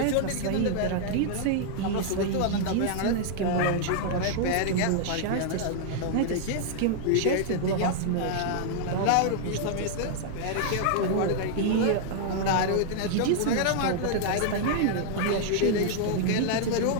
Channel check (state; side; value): different; both; correlation -0.01